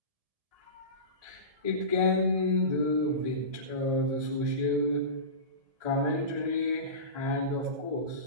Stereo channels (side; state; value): left; late; 1.7 ms